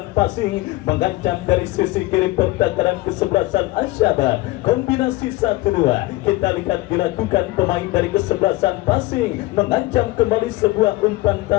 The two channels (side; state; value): right; quieter; 19.9 dB